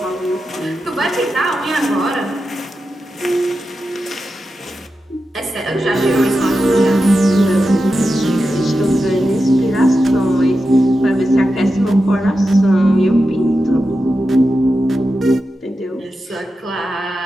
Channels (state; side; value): normal; both; correlation 0.90